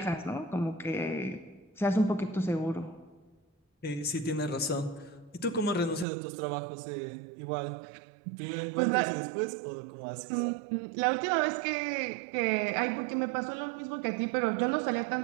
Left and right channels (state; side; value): drops out; left; at 6.1 s